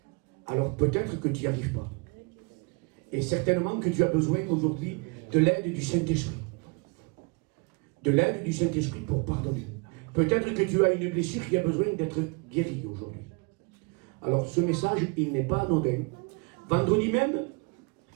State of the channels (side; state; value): left; quieter; 31.2 dB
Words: Alors peut-être que tu n'y arrives pas. Et certainement que tu as besoin aujourd'hui de l'aide du Saint-Esprit. De l'aide du Saint-Esprit pour pardonner. Peut-être que tu as une blessure qui a besoin d'être guérie aujourd'hui. Alors ce message, il n'est pas anodin. Vendredi même,